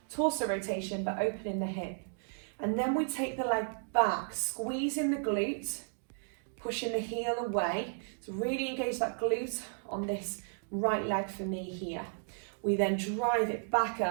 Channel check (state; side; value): silent; left; digital silence